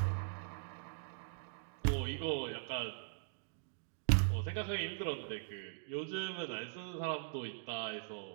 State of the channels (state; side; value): silent; left; digital silence